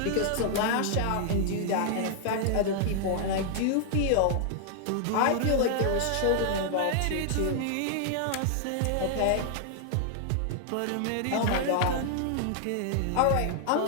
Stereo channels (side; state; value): both; different; correlation -0.01